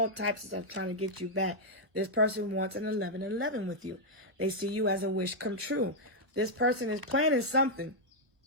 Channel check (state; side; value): late; left; 1.0 ms